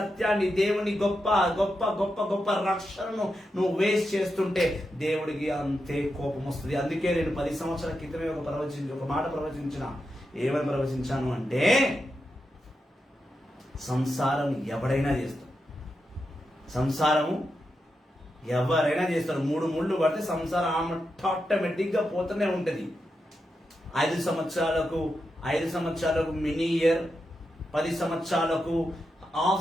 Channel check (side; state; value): both; normal; correlation 0.87